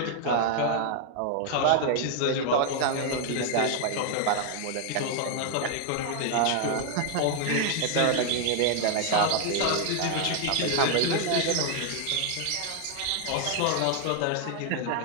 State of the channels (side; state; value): both; different; correlation 0.00